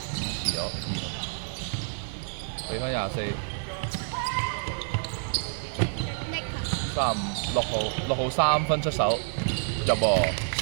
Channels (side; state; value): left; silent; digital silence